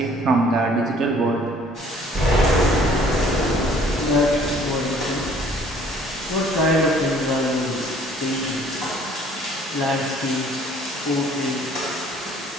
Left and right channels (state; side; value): normal; both; correlation 0.57